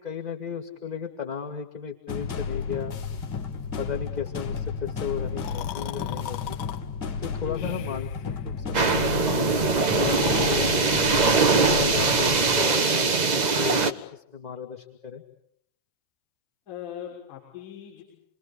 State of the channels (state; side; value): late; left; 2.0 ms